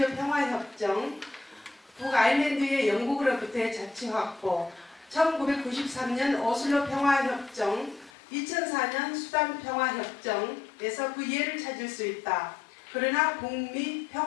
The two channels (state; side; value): drops out; right; at 8.1 s